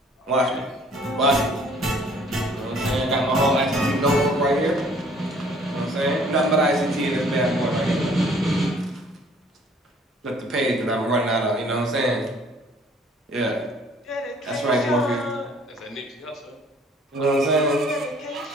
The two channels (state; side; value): normal; both; correlation 0.57